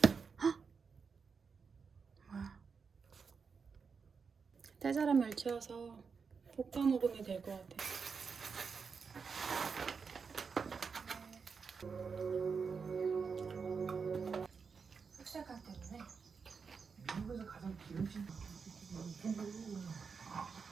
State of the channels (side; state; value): left; quieter; 5.5 dB